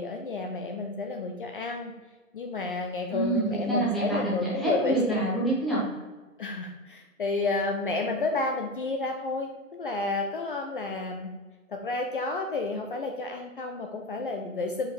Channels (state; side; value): normal; both; correlation 0.22